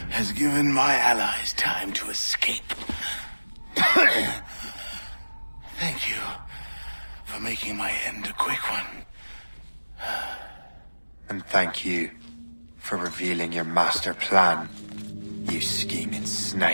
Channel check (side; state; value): both; inverted; correlation -1.00